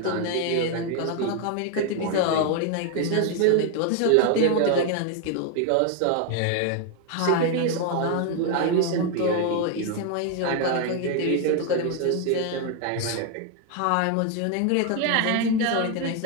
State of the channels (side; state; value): both; different; correlation 0.01